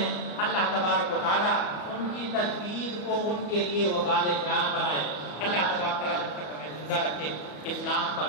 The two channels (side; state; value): right; late; 34 ms